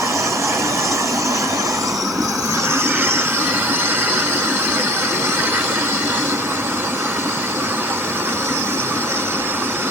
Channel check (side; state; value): both; normal; correlation 0.43